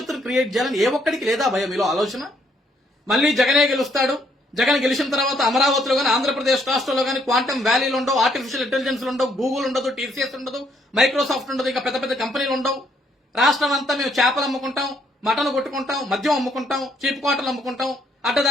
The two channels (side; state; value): both; normal; correlation 0.70